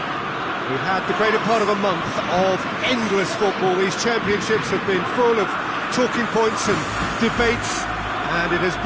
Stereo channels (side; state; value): both; identical; correlation 1.00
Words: We've had the greater part of a month of endless football. These championships have been full of talking points and debates, and it has